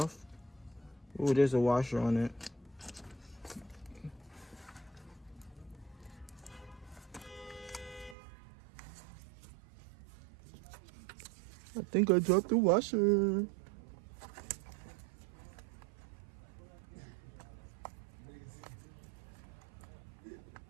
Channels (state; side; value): drops out; left; at 8.2 s